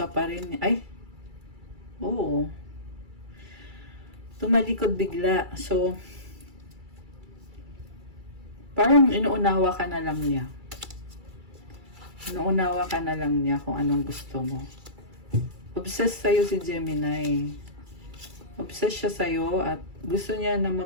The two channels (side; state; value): left; late; 2.3 ms